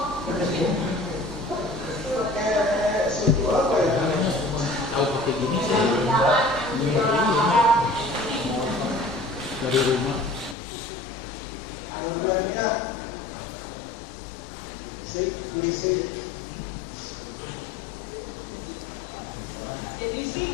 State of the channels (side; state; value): right; drops out; at 10.6 s